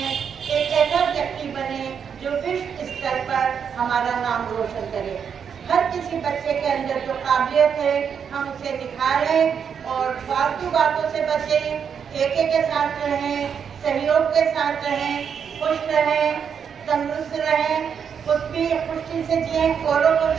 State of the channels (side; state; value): left; quieter; 7.2 dB